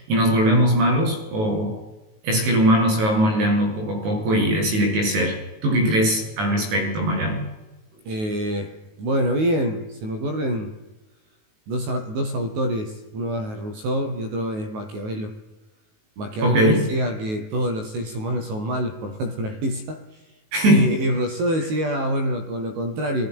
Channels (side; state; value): left; late; 19 ms